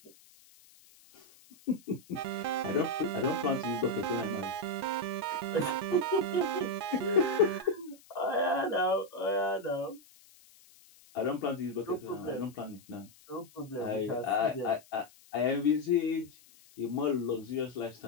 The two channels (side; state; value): left; noise; hiss, 26 dB below the sound